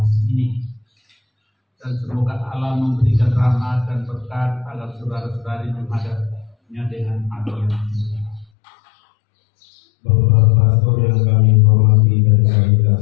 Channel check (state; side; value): drops out; right; at 8.5 s